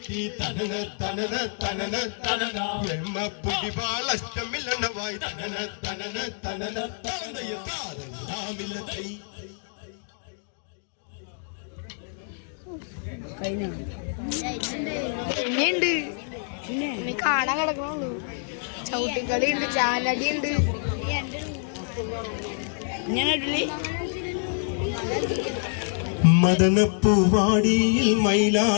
തനന തനന തനന തനന എമ്മ പൊടിവാള അറ്റമില്ലെണ്ണവായി തനന തനന തനന തനയ താരമില്ലതൈ പിന്നെയുണ്ട് പിന്നെ കാണാൻ കിടക്കണുള്ളൂ ചവിട്ടിക്കളി ഉണ്ട് ചാലടി ഉണ്ട് മദനപ്പൂവാടിയിൽ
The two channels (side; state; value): right; silent; 60 dB below the other